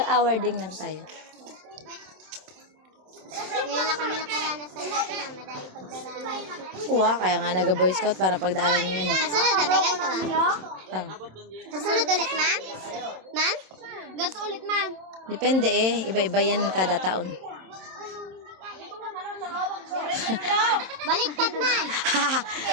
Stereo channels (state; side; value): late; left; 27 ms